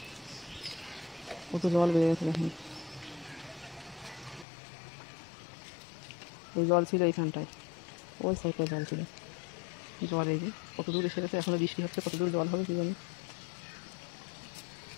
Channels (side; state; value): right; drops out; at 4.5 s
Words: কত জল বেড়ে গেছে দেখুন। ওই জল ছিল এইখানটায়, ওই সাইডটায় জল ছিল। জল এই যে কত দূর এসে গেছে, এখনো বৃষ্টি হচ্ছে, কত দূর জল হবে কি জানি।